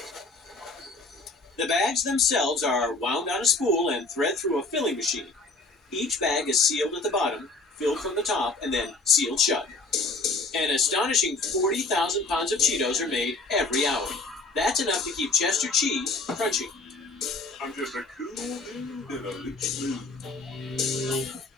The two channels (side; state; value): right; quieter; 3.4 dB